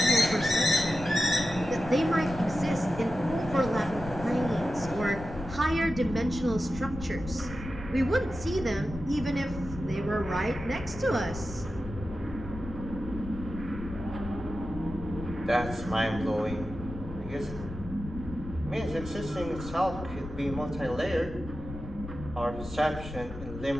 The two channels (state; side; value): noise; left; rumble, 11 dB below the sound